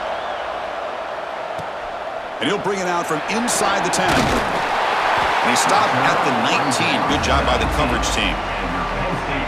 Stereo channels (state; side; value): identical; both; correlation 1.00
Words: And he'll bring it out from inside the 10. And he stopped at the 19. Good job by the coverage team.